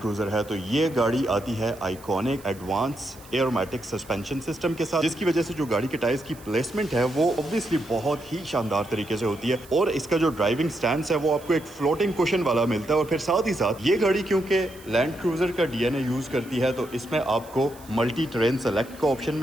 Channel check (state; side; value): noise; right; hiss, 22 dB below the sound